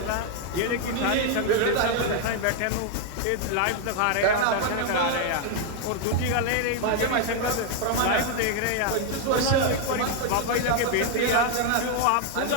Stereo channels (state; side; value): different; both; correlation 0.00